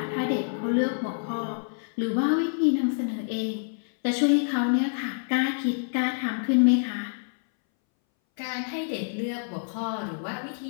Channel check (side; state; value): right; silent; 60 dB below the other